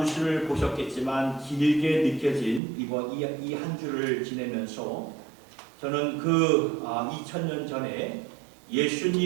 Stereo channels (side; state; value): left; drops out; at 2.6 s